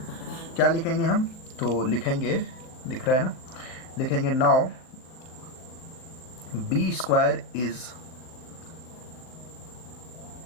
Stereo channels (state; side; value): late; right; 39 ms